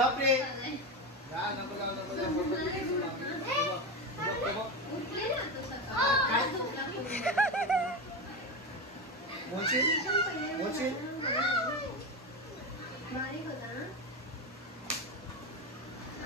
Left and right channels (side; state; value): both; normal; correlation 0.18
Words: उठले ना तो सकाळी. बारीक होता ना,